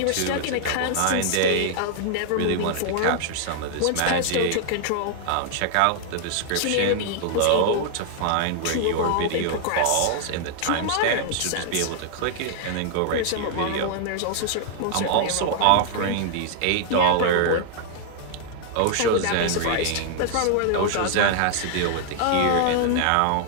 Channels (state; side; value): different; both; correlation 0.00